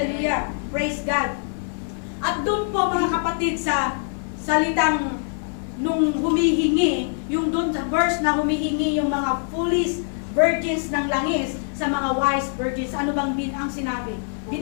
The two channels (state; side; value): silent; right; 63 dB below the other